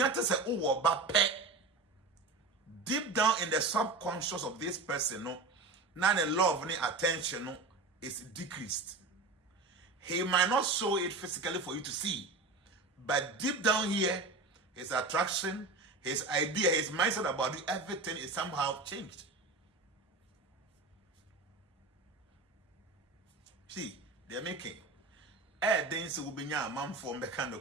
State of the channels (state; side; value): quieter; left; 3.5 dB